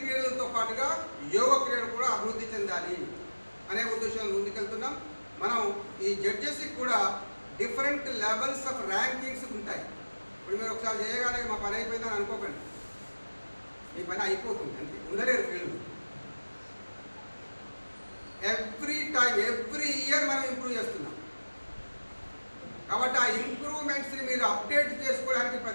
పాటుగా యోగ క్రీడ కూడా అభివృద్ధి చెందాలి అనే ఉద్దేశంలో ముందుకెళ్తున్నాం. మనం ఈ జడ్జెస్కి కూడా డిఫరెంట్ లెవెల్స్ ఆఫ్ ర్యాంకింగ్స్ ఉంటాయి. ఇప్పుడు మీరు ఒకసారి చేయగానే మా పని అయిపోయిందని అనుకోకండి, మీ పని అయిపోతుంది అంతే, ఉండలేరు ఫీల్డ్. ఎవ్రీ ఇయర్ మనం ఇంప్రూవ్ చేస్తున్నాం. కాబట్టి ఆ ఇంప్రూవ్మెంట్స్ని మీరు అప్డేట్ చేసుకోవడానికి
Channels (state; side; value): inverted; both; correlation -1.00